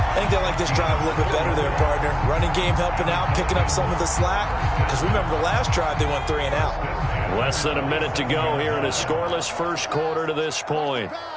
think they like this drive a little bit better there, partner. Running game helping out, picking up some of the slack. Because remember the last drive, they went 3 and out. Less than a minute to go here in a scoreless 1st quarter to this point.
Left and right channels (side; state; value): both; identical; correlation 1.00